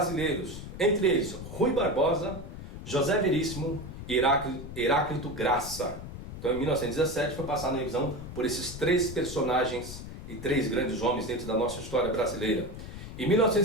entre eles Rui Barbosa, José Veríssimo e Heráclito Graça. Então em 1917 foi passada a revisão por esses três personagens e três grandes homens dentro da nossa história brasileira. Em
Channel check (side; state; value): left; noise; rumble, 10 dB below the sound